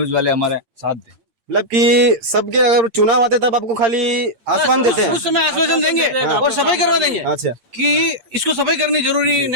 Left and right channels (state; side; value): late; left; 8.7 ms